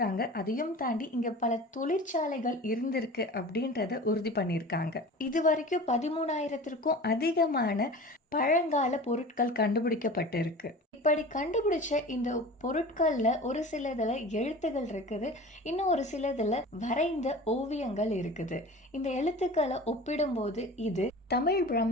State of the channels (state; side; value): normal; both; correlation 0.37